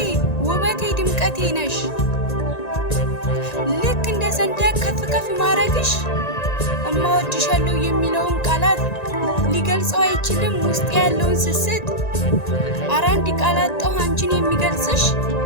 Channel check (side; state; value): right; late; 1.9 ms